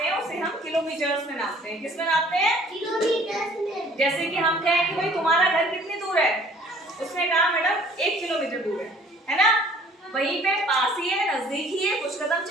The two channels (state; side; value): normal; both; correlation 0.55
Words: हैं उसे हम किलोमीटर्स में नापते हैं। किस में नापते हैं? किलोमीटर में। जैसे कि हम कहें कि भाई तुम्हारा घर कितनी दूर है, उसने कहा मैडम 1 किलोमीटर दूर है ना? वहीं पे पास ही है, नजदीक ही है, कुछ कदम